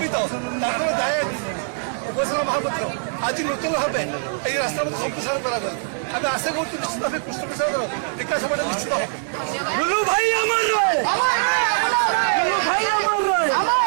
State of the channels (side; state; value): left; silent; 64 dB below the other